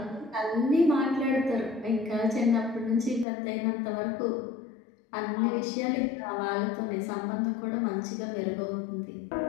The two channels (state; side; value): drops out; right; at 3.2 s